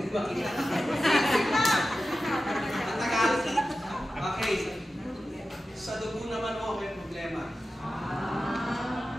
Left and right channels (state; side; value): normal; both; correlation 0.93